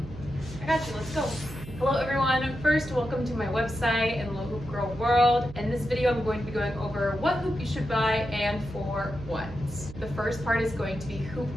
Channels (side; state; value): right; noise; hum, 13 dB below the sound